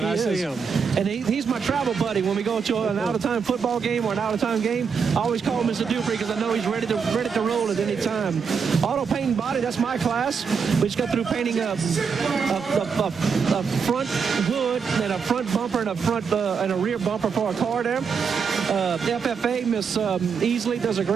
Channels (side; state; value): left; quieter; 6.0 dB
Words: I see him. And he's my travel buddy. When we go to an out-of-time football game or an out-of-time game, I always call Mr. Dupree because I know he's ready to roll at any time. Auto paint and body, that's my class. We just got through painting a front hood and a front bumper and a rear bumper for a car there. FFA, Miss Easley does a